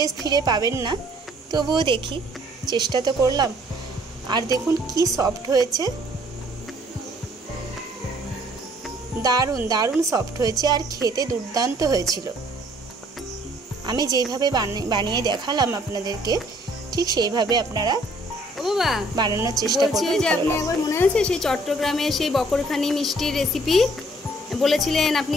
ফিরে পাবেন না, তবুও দেখি, চেষ্টা তো করলাম। আর দেখুন কি সফট হয়েছে, দারুণ দারুণ সফট হয়েছে আর খেতে দুর্দান্ত হয়েছিল। আমি যেইভাবে বানিয়ে দেখালাম আপনাদেরকে, ঠিক সেইভাবে আপনারা বানানোর চেষ্টা করবেন। যে আপনি একবার মনে আছে সেই চট্টগ্রামে সেই বকরখানি মিষ্টির রেসিপি বলেছিলেন,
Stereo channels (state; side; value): normal; both; correlation 0.61